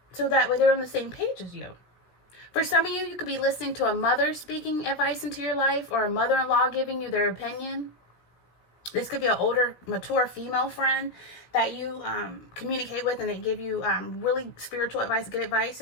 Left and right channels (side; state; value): right; late; 17 ms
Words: so that way they're on the same page as you. For some of you, you could be listening to a mother speaking advice into your life, or a mother-in-law giving you their opinion. This could be an older, mature female friend that you communicate with, and they give you really spiritual advice, good advice.